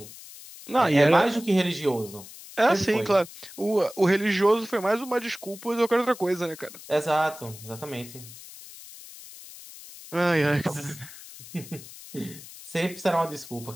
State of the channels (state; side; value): noise; left; hiss, 16 dB below the sound